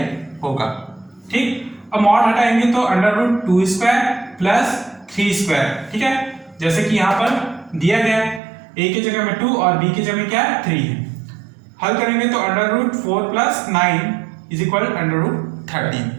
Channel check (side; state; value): left; drops out; at 8.4 s